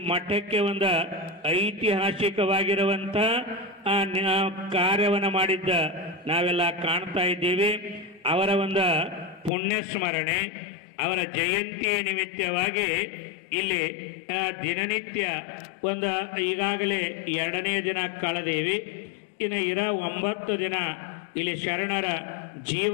ಮಠಕ್ಕೆ ಒಂದು ಐತಿಹಾಸಿಕವಾಗಿರುವಂಥ ಕಾರ್ಯವನ್ನು ಮಾಡಿದ್ದ ನಾವೆಲ್ಲ ಕಾಣ್ತಾ ಇದ್ದೀವಿ. ಅವರ ಒಂದು ಪುಣ್ಯ ಸ್ಮರಣೆ, ಅವರ ಜಯಂತಿಯ ನಿಮಿತ್ತವಾಗಿ ಇಲ್ಲಿ ದಿನನಿತ್ಯ ಒಂದು ಈಗಾಗಲೇ 2ನೇ ದಿನ ಕಳೆದೇವಿ. ಇನ್ನು 9 ದಿನ ಇಲ್ಲಿ ಶರಣರ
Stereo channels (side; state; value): right; drops out; at 9.5 s